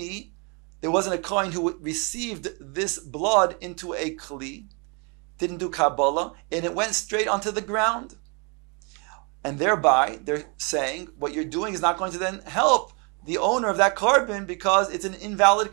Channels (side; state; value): left; quieter; 33.4 dB